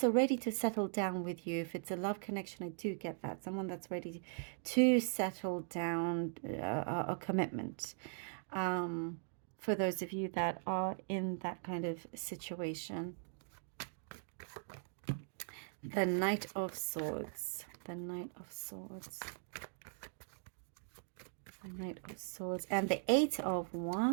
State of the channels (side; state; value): left; silent; digital silence